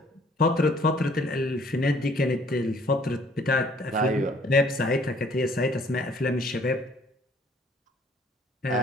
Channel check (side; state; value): both; normal; correlation 0.59